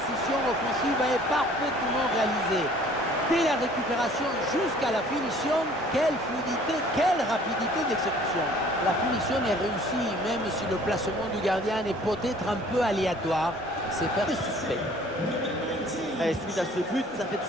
offensive est parfaitement réalisée. Dès la récupération jusqu'à la finition, quelle fluidité, quelle rapidité d'exécution. La finition est réussie, même si le placement du gardien est peut-être un peu aléatoire. C'est faire du suspect. Et suite à ce but, ça fait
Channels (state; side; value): normal; both; correlation 0.54